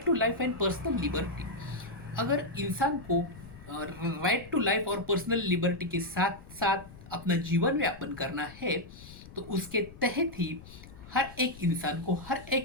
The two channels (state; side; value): noise; left; rumble, 17 dB below the sound